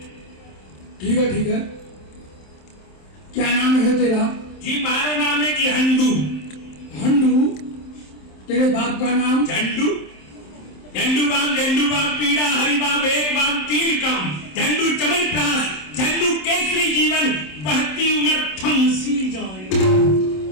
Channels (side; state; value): right; late; 27 ms